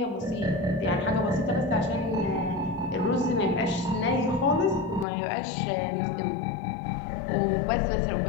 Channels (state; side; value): drops out; right; at 5.1 s